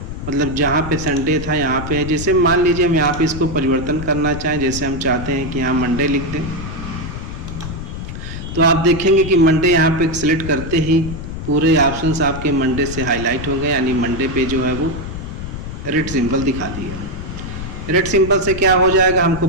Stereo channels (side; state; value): left; noise; rumble, 8 dB below the sound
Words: मतलब जहाँ पे संडे था यहाँ पे है। जैसे मान लीजिए हम यहाँ पे इसको परिवर्तन करना चाहें, जैसे हम चाहते हैं कि यहाँ मंडे लिख दें, तो आप देखेंगे कि मंडे यहाँ पे सिलेक्ट करते ही पूरे ऑप्शंस आपके मंडे से हाईलाइट हो गए, यानी मंडे पे जो है वो रेड सिंबल दिखा दिया। रेड सिंबल से क्या हो जाएगा, हमको